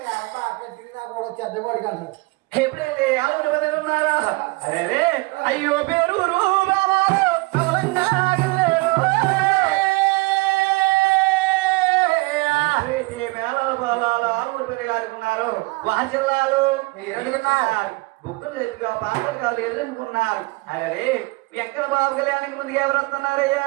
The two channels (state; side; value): quieter; left; 24.3 dB